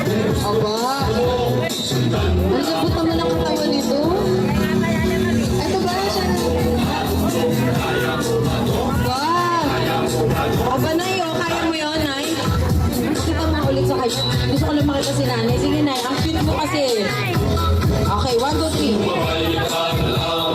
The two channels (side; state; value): both; identical; correlation 1.00